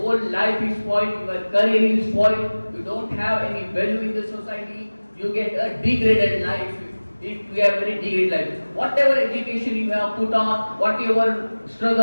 life is spoiled. Your career is spoiled. You don't have any value in the society. You get a degraded life. We have very degraded life. Whatever education you have put on, whatever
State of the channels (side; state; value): both; inverted; correlation -1.00